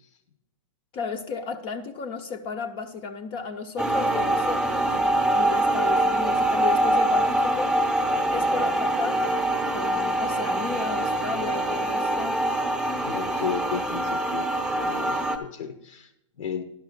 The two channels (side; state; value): both; normal; correlation 0.68